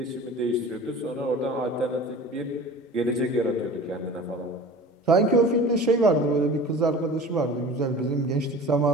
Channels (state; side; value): normal; both; correlation 0.39